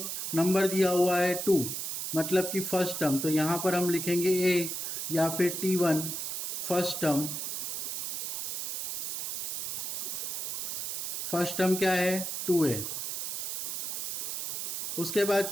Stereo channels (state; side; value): noise; right; hiss, 3 dB below the sound